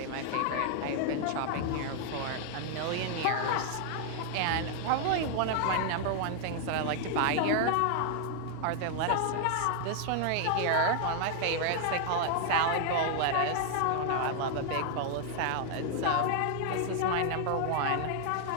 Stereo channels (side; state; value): both; different; correlation 0.00